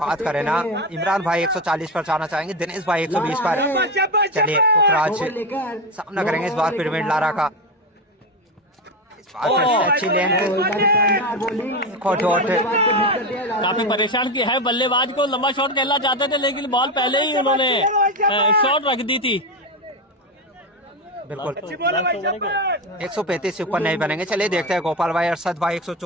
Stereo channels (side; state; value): both; normal; correlation 0.15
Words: करें ना, इमरान भाई 140 पर जाना चाहेंगे, दिनेश भाई 120 पर। चलिए पुखराज सामना करेंगे इस बार पिरामिड लारा का। अच्छी लेंथ, काफी परेशान किया है बल्लेबाज को। लंबा शॉट खेलना चाहते थे लेकिन बॉल पहले ही उन्होंने शॉट रख दी थी। बिल्कुल 135 से ऊपर नहीं बनेंगे। चलिए देखते हैं गोपाल भाई अरशद भाई